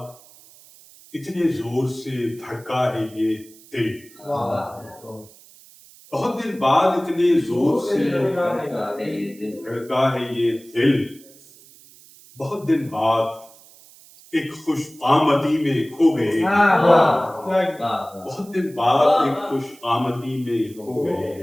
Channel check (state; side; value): noise; right; hiss, 24 dB below the sound